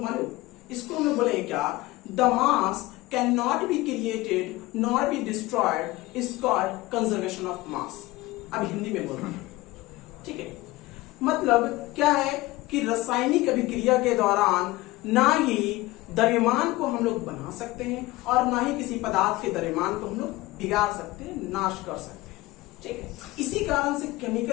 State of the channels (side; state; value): right; quieter; 19.5 dB